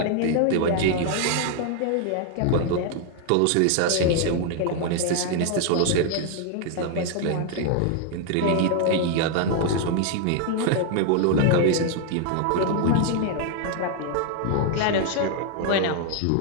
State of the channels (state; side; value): different; both; correlation 0.00